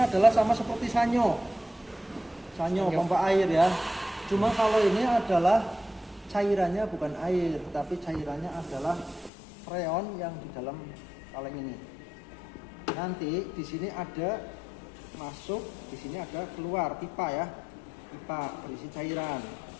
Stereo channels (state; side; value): drops out; right; at 9.3 s